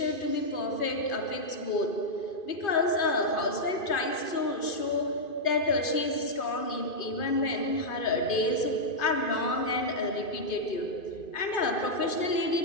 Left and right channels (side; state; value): right; late; 2.5 ms